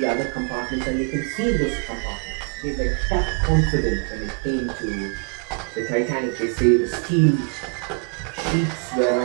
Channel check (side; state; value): left; quieter; 37.3 dB